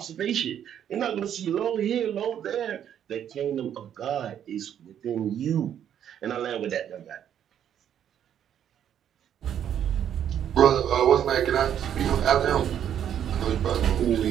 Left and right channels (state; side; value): quieter; left; 9.6 dB